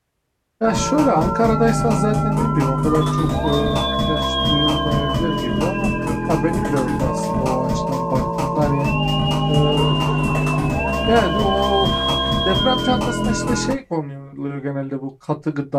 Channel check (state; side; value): identical; both; correlation 1.00